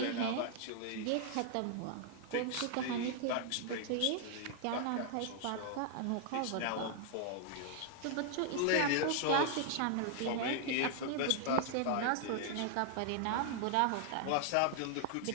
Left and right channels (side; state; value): both; different; correlation -0.01